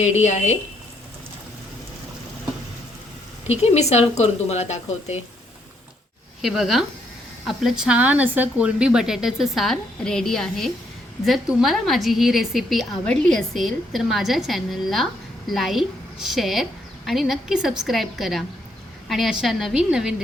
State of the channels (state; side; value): normal; both; correlation 0.73